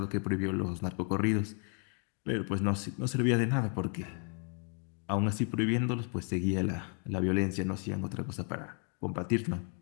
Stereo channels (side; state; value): right; quieter; 39.9 dB